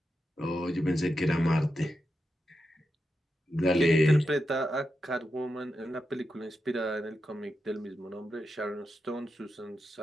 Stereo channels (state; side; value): normal; both; correlation 0.88